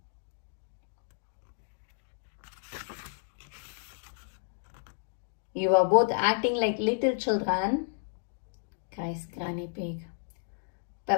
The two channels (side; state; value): right; silent; digital silence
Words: You are both acting like little children, cries Granny Pig.